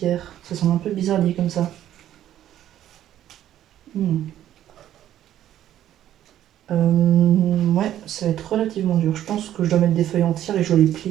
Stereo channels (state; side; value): quieter; left; 11.8 dB